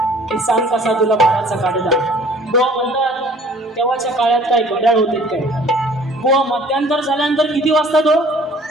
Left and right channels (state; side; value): normal; both; correlation 0.53